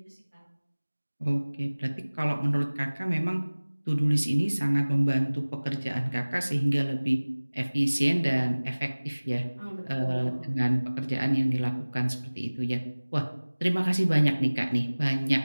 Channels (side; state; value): both; inverted; correlation -1.00